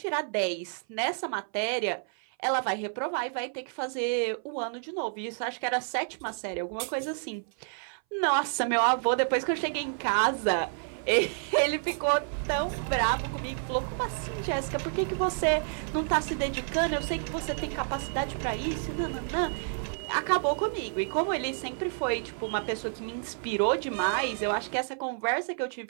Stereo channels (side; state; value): left; silent; 58 dB below the other